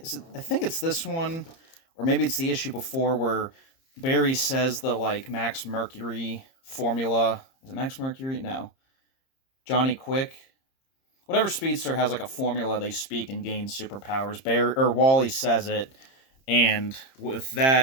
this one, or maybe it's the issue before where Barry says the like Max Mercury formula. Is it Max Mercury? No. Johnny Quick. Whatever speedster has like a formula they speak and gain superpowers. Wally says it, and with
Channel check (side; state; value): right; late; 30 ms